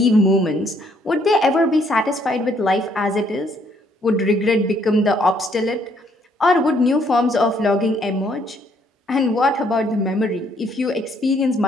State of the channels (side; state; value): both; normal; correlation 0.67